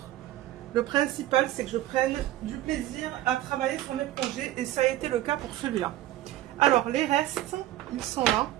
Le principal, c'est que je prenne du plaisir à travailler sur mes projets et ça a été le cas pour celui-là. Alors, les restes, ils sont là.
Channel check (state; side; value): quieter; left; 14.5 dB